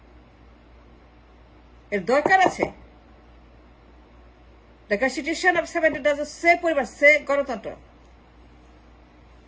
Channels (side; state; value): both; identical; correlation 1.00